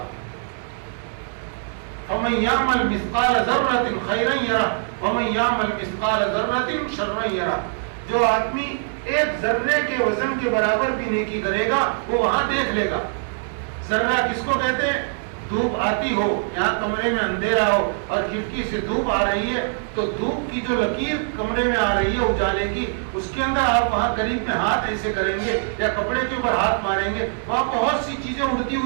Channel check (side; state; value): left; silent; digital silence